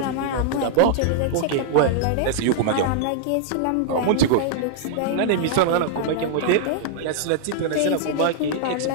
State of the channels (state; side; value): different; both; correlation -0.01